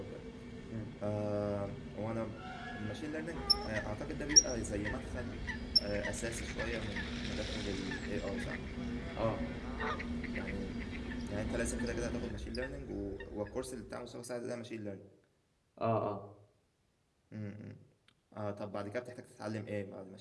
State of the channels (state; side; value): identical; both; correlation 1.00